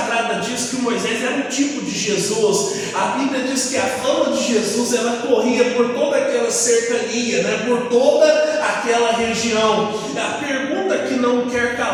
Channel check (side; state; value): both; identical; correlation 1.00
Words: diz que Moisés era um tipo de Jesus. A Bíblia diz que a fama de Jesus, ela corria por toda aquela cercania, né? Por toda aquela região. A pergunta que não quer